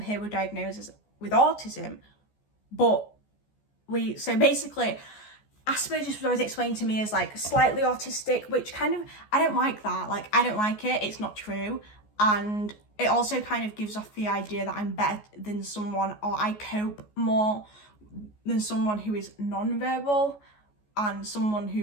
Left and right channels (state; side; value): late; right; 14 ms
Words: were diagnosed with autism. But so basically, Asperger's was always explained to me as like slightly autistic, which kind of, I don't like that. Like, I don't like it. It's not true. And it also kind of gives off the idea that I'm better than someone, or I cope more than someone who is non-verbal, and someone